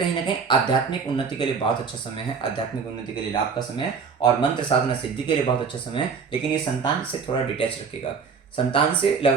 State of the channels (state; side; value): quieter; left; 5.7 dB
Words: ना कहीं आध्यात्मिक उन्नति के लिए बहुत अच्छा समय है, आध्यात्मिक उन्नति के लिए लाभ का समय है, और मंत्र साधना सिद्धि के लिए बहुत अच्छा समय है। लेकिन ये संतान से थोड़ा डिटैच रखेगा, संतान से